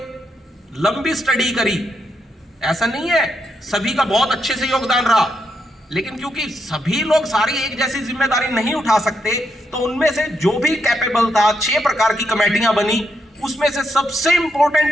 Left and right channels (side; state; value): both; normal; correlation 0.80